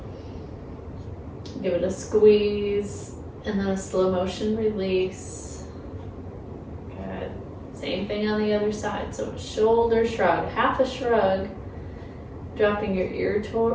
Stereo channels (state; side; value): identical; both; correlation 1.00